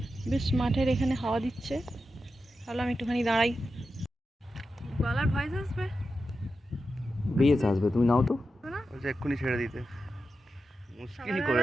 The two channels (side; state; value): both; normal; correlation 0.90